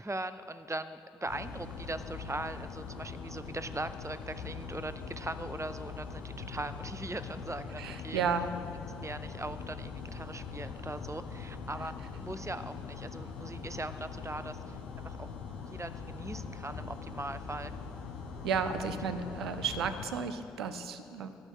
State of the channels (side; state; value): both; normal; correlation 0.54